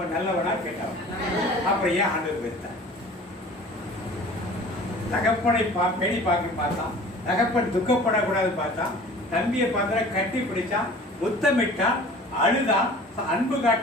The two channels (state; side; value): normal; both; correlation 0.44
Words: நல்லவனா கேட்டவன். அப்புறம் ஏன் ஆண்டவர் வெறுத்தான்? தகப்பனை பேணி பார்க்க பார்த்தான். தகப்பன் துக்கப்படக்கூடாது பார்த்தான். தம்பியை பார்த்தா கட்டி பிடிச்சான், முத்தமிட்டான், அழுதான், அன்பு